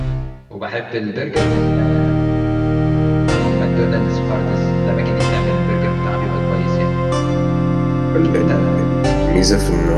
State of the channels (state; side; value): identical; both; correlation 1.00